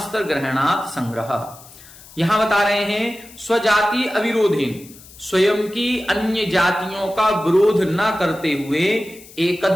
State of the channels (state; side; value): noise; left; hiss, 21 dB below the sound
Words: ग्रहणात् संग्रह। यहां बता रहे हैं स्वजाति अविरोधेन, स्वयं की अन्य जातियों का विरोध न करते हुए,